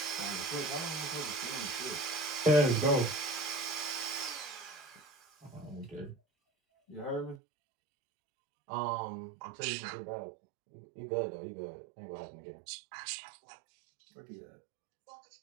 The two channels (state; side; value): drops out; left; at 7.4 s